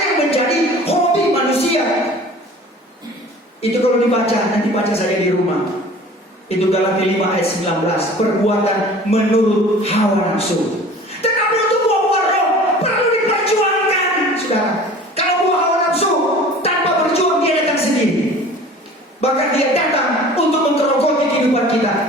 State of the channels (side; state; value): both; normal; correlation 0.44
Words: yang menjadi hobi manusia. Itu kalau dibaca, nanti baca saja di rumah. Itu Galatia 5 ayat 19, perbuatan menurut hawa nafsu. Tetapi untuk buah-buah roh perlu diperjuangkan. Bahkan dia datang untuk menggerogoti kehidupan kita.